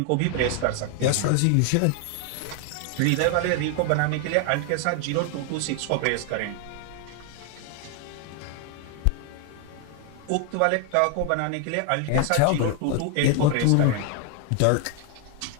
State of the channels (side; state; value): both; different; correlation 0.01